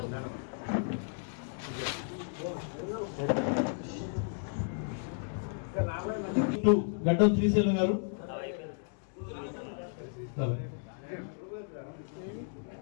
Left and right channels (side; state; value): right; silent; digital silence